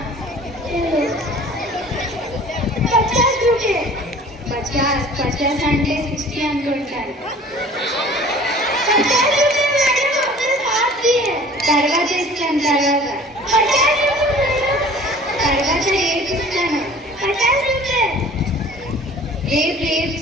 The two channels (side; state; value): both; normal; correlation 0.47